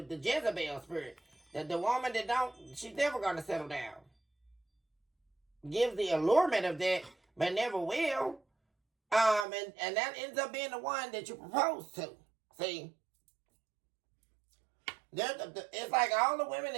Jezebel spirit. The woman that she's never going to settle down. Gives the allurement of that, but never will. And that ends up being the one that you propose to. See? It's like all the women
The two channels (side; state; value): left; drops out; at 9.5 s